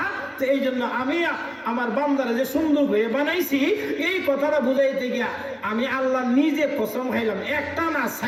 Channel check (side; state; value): both; identical; correlation 1.00